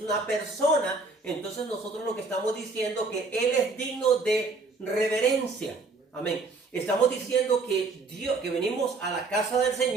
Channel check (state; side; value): quieter; left; 3.8 dB